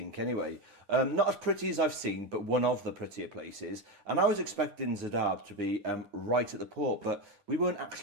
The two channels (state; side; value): late; left; 9.9 ms